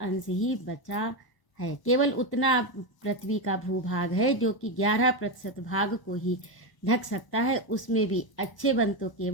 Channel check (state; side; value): late; right; 1.0 ms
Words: अंश ही बचा है। केवल उतना पृथ्वी का भूभाग है जो कि 11% भाग को ही ढक सकता है। उसमें भी अच्छे वन तो